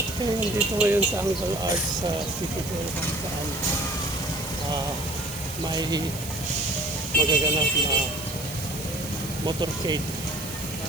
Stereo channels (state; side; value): noise; right; hiss, 11 dB below the sound